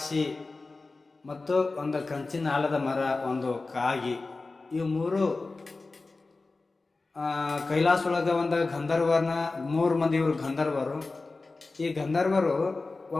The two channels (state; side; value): quieter; right; 3.6 dB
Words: ಮತ್ತು ಒಂದು ಕಂಚಿನ ಆಲದ ಮರ, ಒಂದು ಕಾಗಿ, ಇವು ಮೂರು ಕೈಲಾಸ ಒಳಗೆ ಒಂದು ಗಂಧರ್ವನ 3 ಮಂದಿ ಇವರು ಗಂಧರ್ವರು. ಈ ಗಂಧರ್ವರು